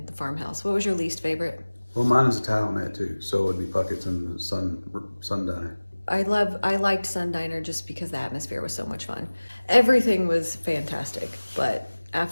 the farmhouse. What was your least favorite? Well, mine is a tie on that too. So it'd be Puckett's and the Sun Diner. I liked Sun Diner just because the atmosphere was so much fun. Everything was fantastic, but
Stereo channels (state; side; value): inverted; both; correlation -1.00